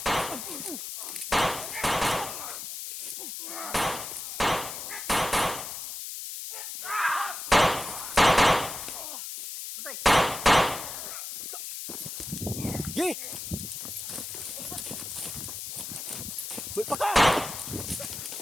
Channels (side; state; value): left; noise; hiss, 7 dB below the sound